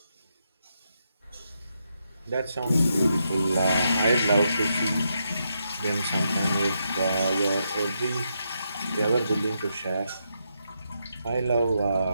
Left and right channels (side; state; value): both; inverted; correlation -0.82